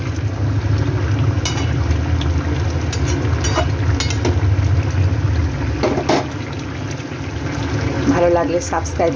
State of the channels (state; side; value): identical; both; correlation 1.00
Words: ভালো লাগলে সাবস্ক্রাইব